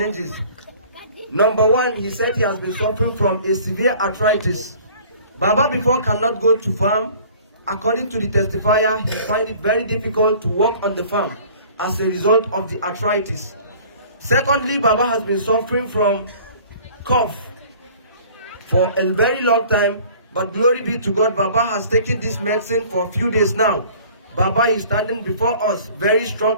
Number one, he said he has been suffering from a severe arthritis. Baba before cannot go to farm. According to the testifier, he find it very difficult to work on the farm as a result of the arthritis. Secondly, Baba has been suffering from cough for a very long time, but glory be to God, Baba has taken this medicine for a few days now. Baba is standing before us very strong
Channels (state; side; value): inverted; both; correlation -0.50